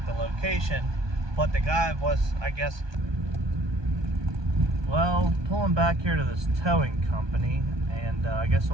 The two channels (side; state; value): left; late; 1.2 ms